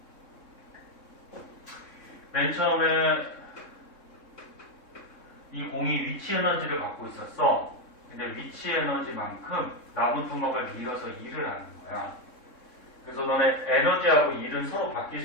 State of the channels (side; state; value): right; late; 3.7 ms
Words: 맨 처음에 이 공이 위치 에너지를 갖고 있었어. 근데 위치 에너지만큼 나무 토막을 밀어서 일을 하는 거야. 그래서 너네 에너지하고 일은 서로 바뀔